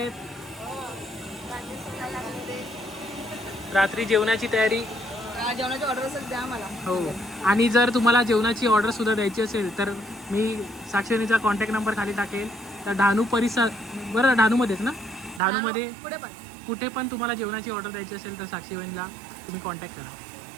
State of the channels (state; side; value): drops out; left; at 15.4 s